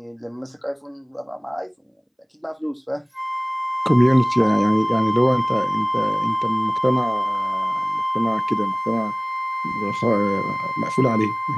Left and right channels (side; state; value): both; identical; correlation 1.00